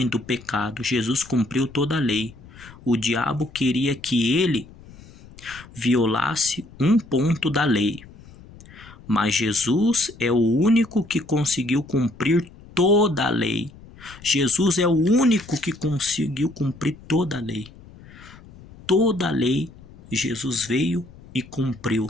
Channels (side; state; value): left; noise; rumble, 21 dB below the sound